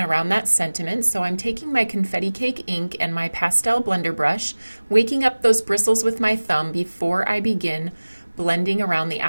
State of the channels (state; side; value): inverted; both; correlation -1.00